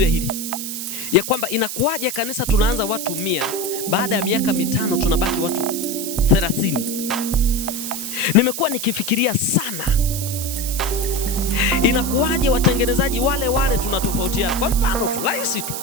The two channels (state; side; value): noise; right; hiss, 6 dB below the sound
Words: ya hili, ya kwamba inakuwaje kanisa tunaanza watu 100, baada ya miaka 5 tunabaki watu 30. Nimekuwa nikifikiria sana, inakuwaje watengenezaji wale tunatofautiana. Kwa mfano tu rahisi tu,